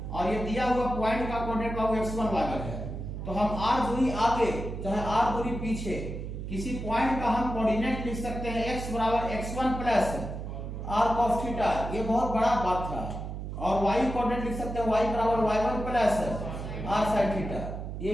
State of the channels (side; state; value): right; noise; hum, 6 dB below the sound